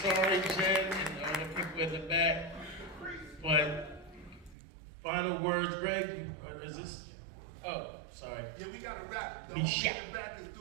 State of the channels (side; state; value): left; drops out; at 4.5 s